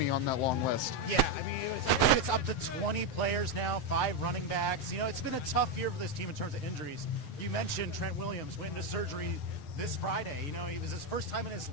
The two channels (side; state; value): right; late; 7.8 ms